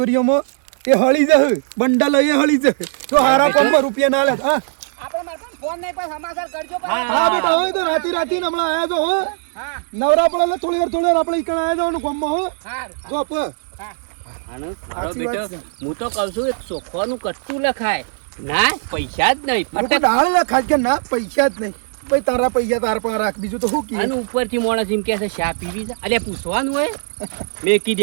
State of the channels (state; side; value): silent; left; digital silence